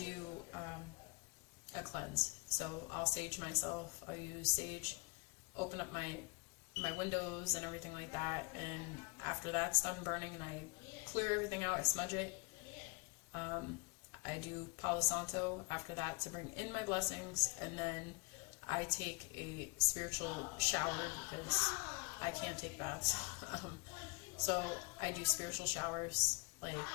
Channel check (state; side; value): quieter; right; 27.9 dB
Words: a cleanse. So I'll sage myself. I'll use sage, open up my windows and everything like that. And after that's done burning, and I clear everything out, I smudge it. I do Palo Santo after that to bring in my blessings, and then I take a spiritual shower because I can't take baths. So I do spiritual showers, like,